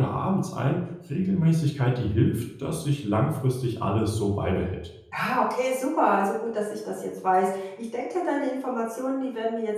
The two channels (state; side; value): identical; both; correlation 1.00